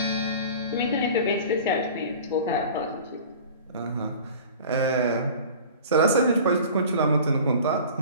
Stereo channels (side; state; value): both; inverted; correlation -0.41